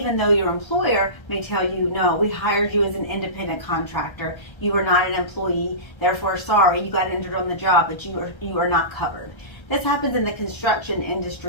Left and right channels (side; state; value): right; late; 1.3 ms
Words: though your employer may tell you, no, we hired you as an independent contractor, you are not an employee, therefore sorry, you got injured on the job, but you are not covered. This happens in the construction